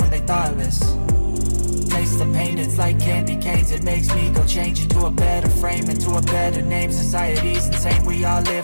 they thoughtless. Taste the pain, it's like candy canes. It makes me go change into a better frame, into a better name. Society's insane, we all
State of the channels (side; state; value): both; inverted; correlation -1.00